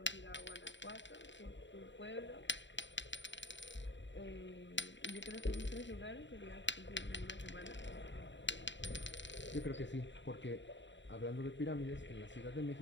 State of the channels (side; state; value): right; late; 0.53 ms